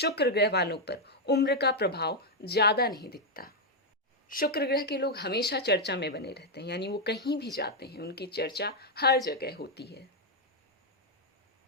ग्रह वालों पर उम्र का प्रभाव ज्यादा नहीं दिखता। शुक्र ग्रह के लोग हमेशा चर्चा में बने रहते हैं, यानी वो कहीं भी जाते हैं उनकी चर्चा हर जगह होती है।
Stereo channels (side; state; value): both; normal; correlation 0.00